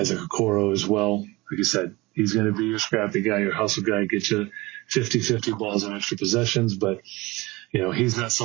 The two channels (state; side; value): quieter; left; 21.9 dB